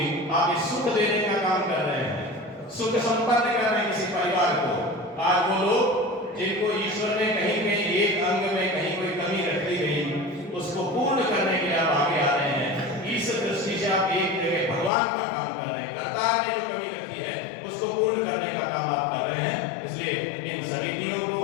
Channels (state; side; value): drops out; right; at 14.9 s